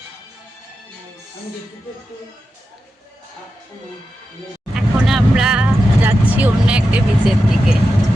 এখন আমরা যাচ্ছি অন্য একটা বিচের দিকে,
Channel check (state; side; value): normal; both; correlation 0.90